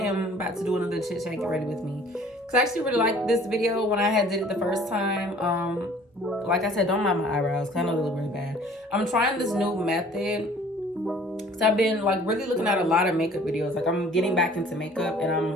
about to do another chit chat. Get ready with me, because I actually really liked this video when I did it the first time. Like I said, don't mind my eyebrows because I know they look really bad. I'm trying this new method because I've been like really looking at a lot of makeup videos. Like I'm getting back into makeup and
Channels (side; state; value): both; normal; correlation 0.52